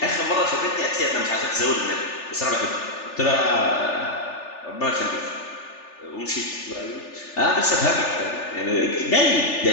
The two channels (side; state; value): right; late; 3.4 ms